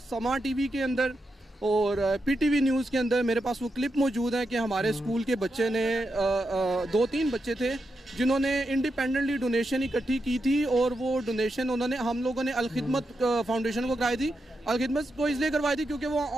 TV के अंदर और PTV न्यूज़ के अंदर मेरे पास वो क्लिप मौजूद है कि हमारे स्कूल के बच्चे ने 2-3 बच्चे थे जिन्होंने इंडिपेंडेंटली डोनेशन इकट्ठी की थी, और वो डोनेशन हम लोगों ने अलखिदमत फाउंडेशन को कराई थी। अलखिदमत को इसलिए करवाई थी क्योंकि वो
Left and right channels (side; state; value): both; normal; correlation 0.86